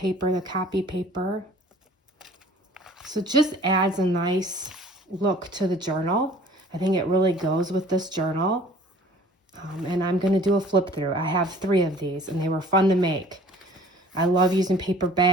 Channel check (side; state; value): both; normal; correlation 0.50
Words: the copy paper. So it just adds a nice look to the journal. I think it really goes with this journal. And I'm going to do a flip through. I have 3 of these, and they were fun to make. I love using paper